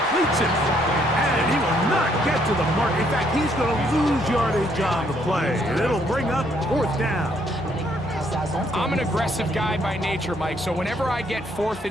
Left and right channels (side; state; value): both; normal; correlation 0.69